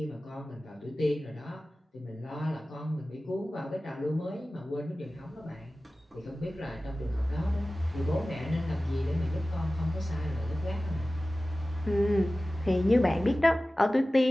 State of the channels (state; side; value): normal; both; correlation 0.96